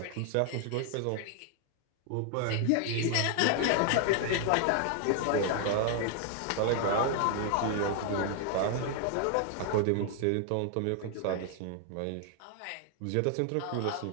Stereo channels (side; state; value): both; different; correlation 0.00